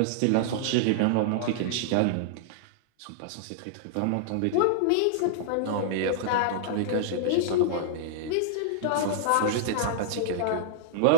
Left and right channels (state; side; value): different; both; correlation -0.01